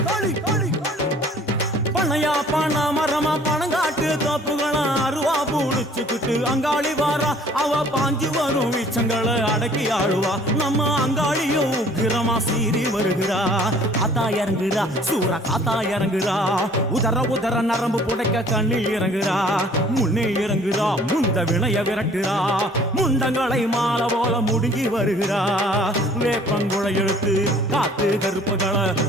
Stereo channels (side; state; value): both; normal; correlation 0.54